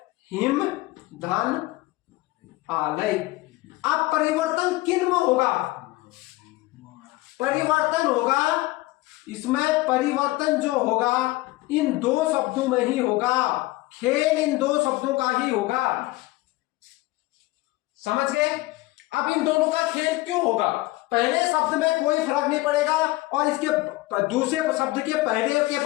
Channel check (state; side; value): quieter; right; 20.0 dB